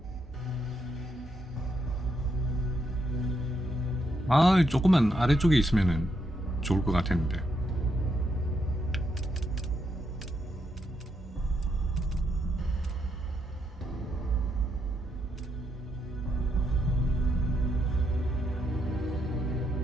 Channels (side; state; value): both; normal; correlation 0.79